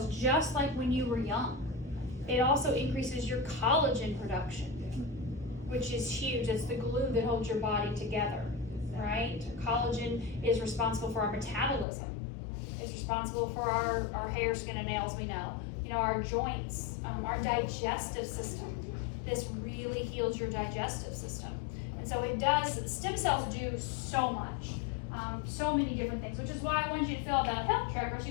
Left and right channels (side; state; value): right; drops out; at 11.9 s